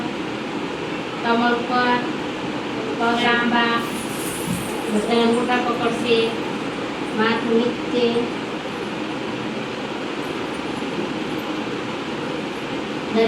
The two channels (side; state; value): both; identical; correlation 1.00